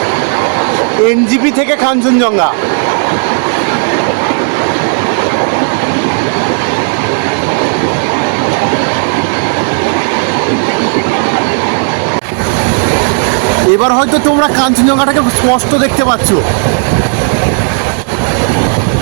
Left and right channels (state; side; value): silent; left; 70 dB below the other